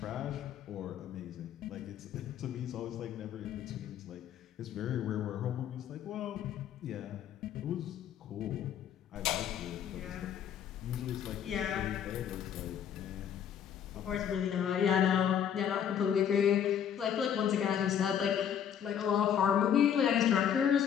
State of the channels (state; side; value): quieter; right; 9.0 dB